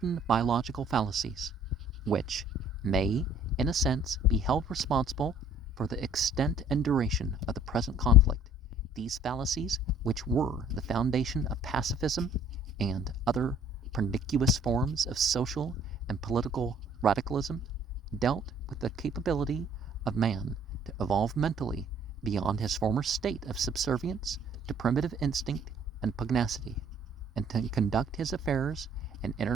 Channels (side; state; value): both; normal; correlation 0.55